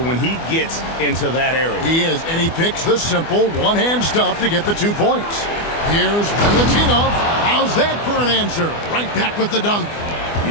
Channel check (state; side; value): late; right; 24 ms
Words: he gets into that area. He is, and he picks the simple one-hand stuff to get the 2 points. Here's Valentinov. How's that for an answer? Right back with the dunk.